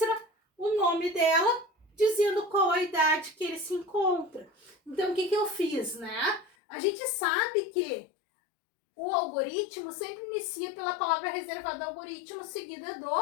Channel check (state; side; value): drops out; right; at 6.5 s